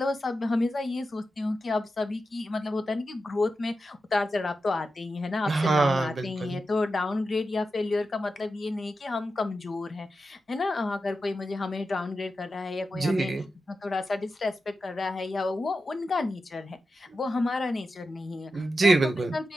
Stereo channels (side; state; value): both; normal; correlation 0.90